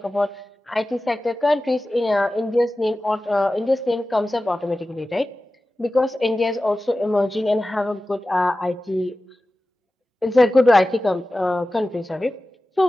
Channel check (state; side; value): normal; both; correlation 0.95